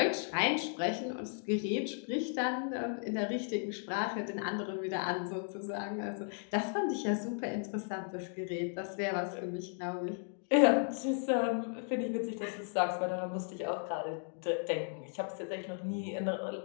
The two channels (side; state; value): right; silent; 54 dB below the other